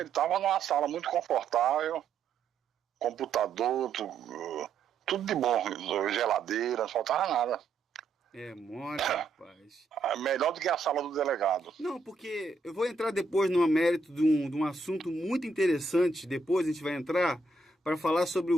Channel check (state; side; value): quieter; left; 3.7 dB